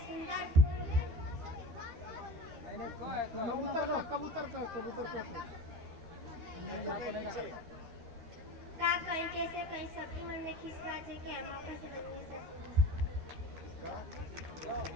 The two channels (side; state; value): left; late; 13 ms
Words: फूल, कबूतर का का कहीं कैसे कहीं सबके मन में खिसरा जे के हम कैसे बनी